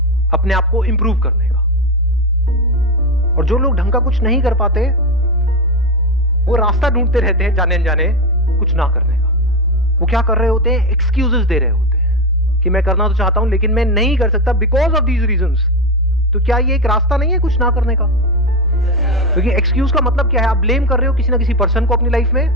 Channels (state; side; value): normal; both; correlation 0.13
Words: अपने आप को इंप्रूव करने का। और जो लोग ढंग का कुछ नहीं कर पाते, वो रास्ता ढूंढते रहते हैं जाने अनजाने कुछ ना करने का। वो क्या कर रहे होते हैं, एक्सक्यूजेस दे रहे होते हैं कि मैं करना तो चाहता हूं लेकिन मैं नहीं कर सकता बिकॉज ऑफ दीज रीजंस। तो क्या ये एक रास्ता नहीं है कुछ ना करने का? क्योंकि एक्सक्यूज का मतलब क्या है, आप ब्लेम कर रहे हो किसी ना किसी पर्सन को अपनी लाइफ में।